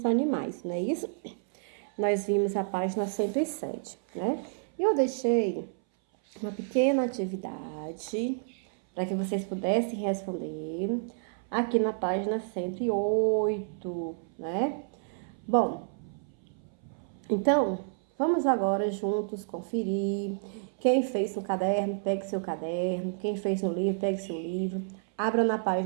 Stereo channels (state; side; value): silent; left; 58 dB below the other